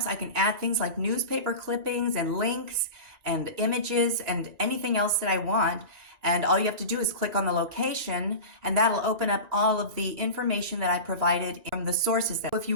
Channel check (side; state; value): left; late; 1.9 ms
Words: I can add things like newspaper clippings and links and images and anything else that I want. And all you have to do is click on the location, and that'll open up all of the information that I provided from the sources. If